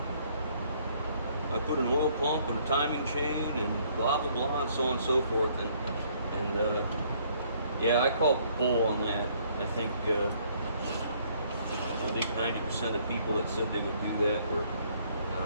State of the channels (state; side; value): inverted; both; correlation -0.64